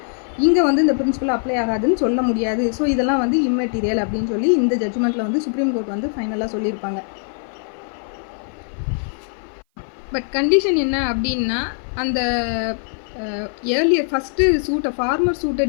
இங்கே வந்து இந்த பிரின்சிபல் அப்ளை ஆகாதுன்னு சொல்ல முடியாது. ஸோ இதெல்லாம் வந்து இம்மெட்டீரியல் அப்படின்னு சொல்லி இந்த ஜட்ஜ்மெண்ட்டில் வந்து சுப்ரீம் கோர்ட் வந்து ஃபைனலாக சொல்லியிருப்பாங்க. பட் கண்டிஷன் என்ன அப்படின்னா, அந்த ஏர்லியர் ஃபஸ்ட்டு சூட்டை ஃபார்மர் சூட்டை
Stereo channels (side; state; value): right; silent; 56 dB below the other